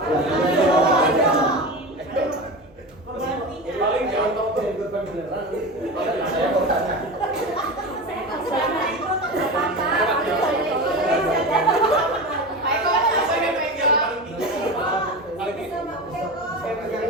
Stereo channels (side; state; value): both; normal; correlation 0.27